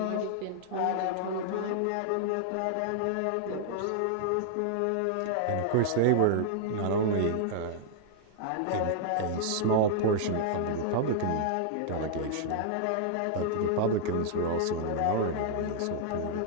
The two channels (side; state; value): both; different; correlation -0.01